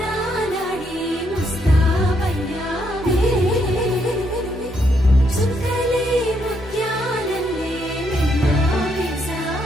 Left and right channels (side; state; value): both; normal; correlation 0.75